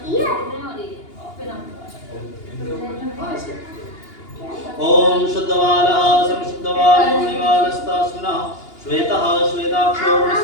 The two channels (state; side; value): late; right; 2.8 ms